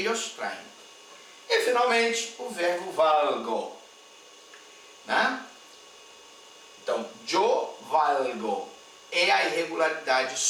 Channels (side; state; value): both; identical; correlation 1.00